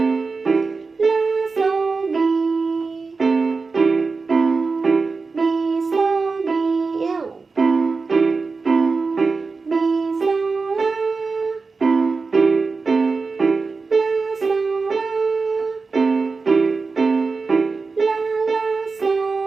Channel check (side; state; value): left; quieter; 4.3 dB